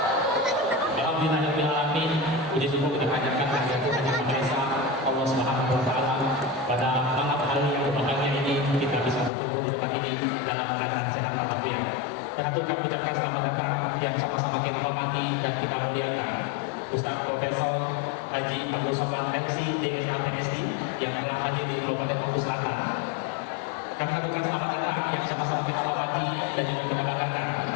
Alhamdulillahirrahmanirrahim. Puji syukur kita panjatkan kehadiran Maha Esa Allah Subhanahu wa taala pada malam hari yang berbahagia ini kita bisa berkumpul di tempat ini dalam keadaan sehat walafiat. Dan itu kami ucapkan selamat datang yang sama-sama kita hormati dan kita muliakan Ustaz Profesor Haji Abdul Somad Mensi DSA PSD yang telah hadir di Kabupaten Bogor Selatan. Kami ucapkan selamat datang yang sama-sama kita hormati dan juga kita banggakan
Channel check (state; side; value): drops out; right; at 9.3 s